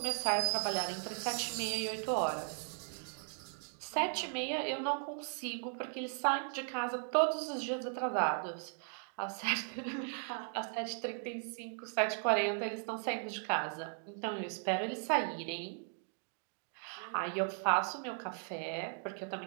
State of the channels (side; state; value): left; silent; 53 dB below the other